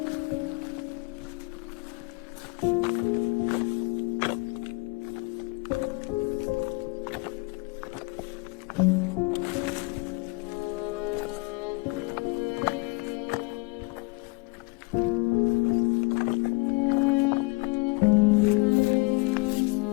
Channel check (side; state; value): right; quieter; 27.3 dB